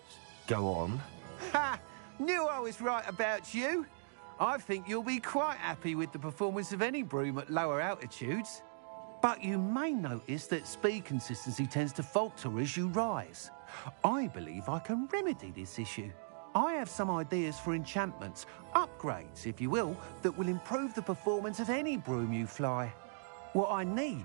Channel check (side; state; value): left; silent; digital silence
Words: Go on. Ha! Knew I was right about you. I think you'll be quite happy with the performance of any broom at lower altitudes. But you may notice that speed consistency tends to falter as you rise. I believe I can remedy this issue. I have some ideas for enchantments, upgrades, if you will, that will improve the performance of any broom you fly. What I